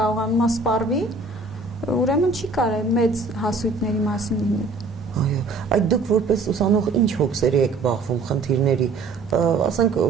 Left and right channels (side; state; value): left; quieter; 3.9 dB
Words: սպառվի, ուրեմն չի կարելի մեծ հասույթների մասին լինել։ Այո, այդ դուք որպես ուսանող ինչ հոգսերի եք բախվում խնդիրների, ասենք